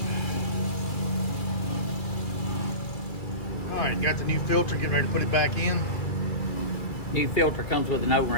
Alright, got the new filter, getting ready to put it back in. New filter comes with an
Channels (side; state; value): right; late; 2.3 ms